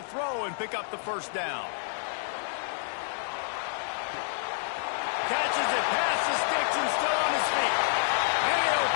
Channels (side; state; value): right; silent; digital silence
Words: throw and pick up the first down. Catches it past the sticks and still on his feet. And he'll